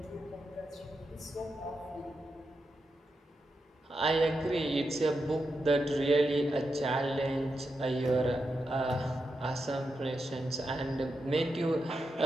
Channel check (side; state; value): both; normal; correlation 0.86